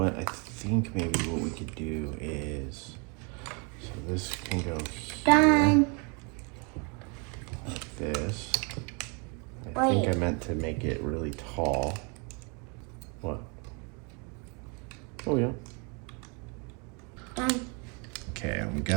I think maybe what we could do is, so this can go here. Done. Like this. I Wait. think I meant to make it really tall. What? Oh, yeah. Done. Okay, we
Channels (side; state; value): left; quieter; 33.7 dB